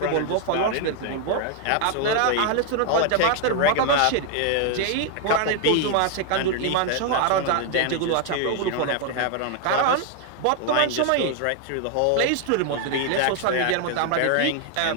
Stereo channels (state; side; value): different; both; correlation 0.00